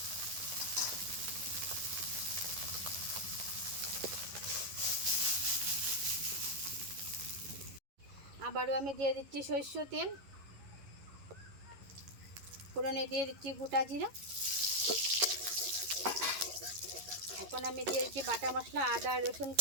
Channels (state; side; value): late; left; 11 ms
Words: আবারও আমি দিয়ে দিচ্ছি সরষের তেল, ফোড়নে দিয়ে দিচ্ছি গোটা জিরা। এখন আমি দিয়ে দিচ্ছি বাটা মশলা, আদা রসুন